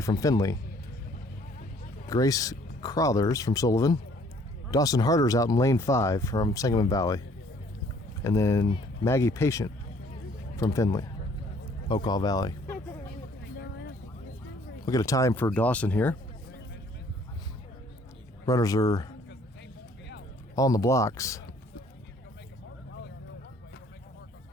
from Findlay. Grace Crothers from Sullivan. Dawson Harder's out in lane 5 from Sangamon Valley. And then Maggie Patient from Findlay Okaw Valley. We'll get a time for Dawson here. Runners are on the blocks.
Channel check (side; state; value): both; normal; correlation 0.59